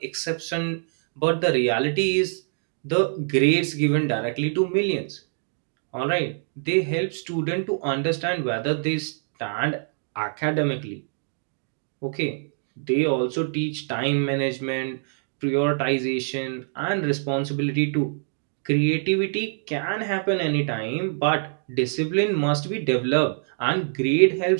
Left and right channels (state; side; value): silent; left; digital silence